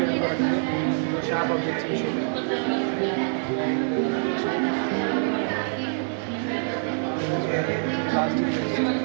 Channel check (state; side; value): silent; left; 62 dB below the other